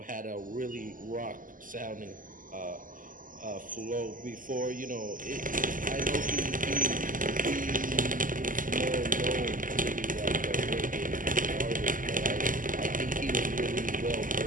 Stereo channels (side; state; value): left; late; 0.39 ms